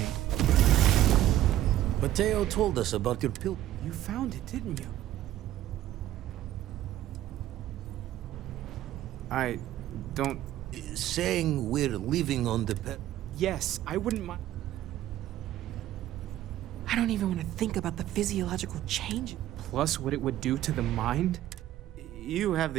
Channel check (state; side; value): quieter; left; 13.3 dB